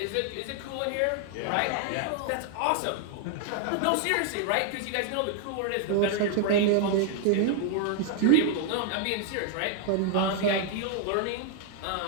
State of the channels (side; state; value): both; different; correlation 0.00